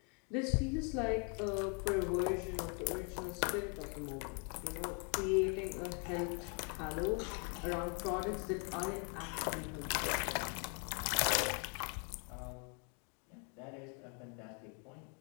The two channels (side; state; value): right; quieter; 35.2 dB